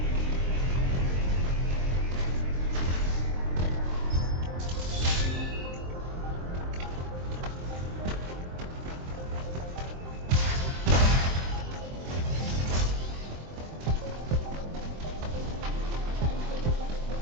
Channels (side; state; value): left; late; 23 ms